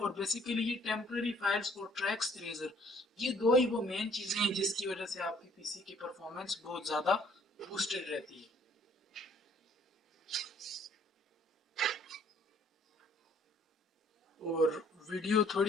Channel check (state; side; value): normal; both; correlation 0.61